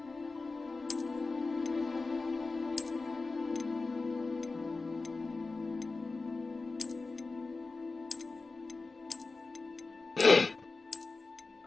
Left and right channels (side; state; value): right; quieter; 3.8 dB